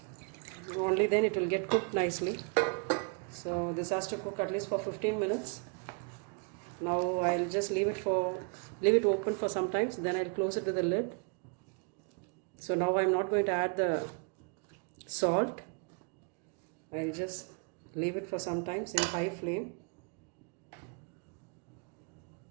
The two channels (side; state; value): left; quieter; 36.9 dB